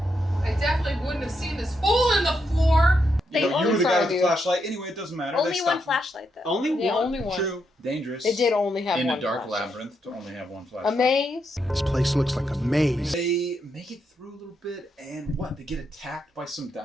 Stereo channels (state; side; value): normal; both; correlation 0.81